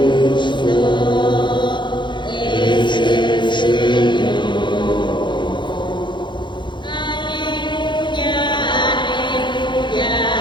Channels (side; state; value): right; late; 0.23 ms